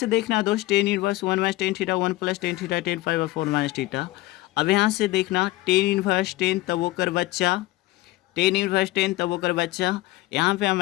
देखना दोस्त, 10 inverse 1 minus ten theta 1 plus ten theta 10π/4 minus theta. अब यहाँ से देखना 10 इनवर्स 10 तब वो कर बच्चा, 10 इनवर्स 10 तब वो कर बच्चा। यहाँ पे हम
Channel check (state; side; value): quieter; right; 18.3 dB